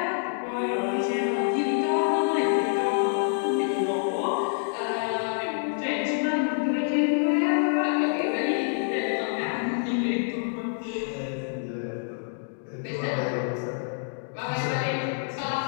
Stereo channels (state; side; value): silent; right; digital silence